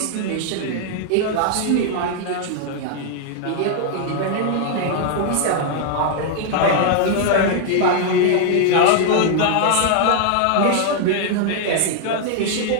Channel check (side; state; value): both; different; correlation 0.00